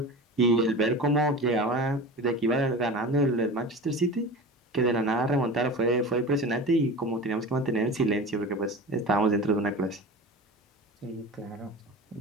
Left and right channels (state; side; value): normal; both; correlation 0.33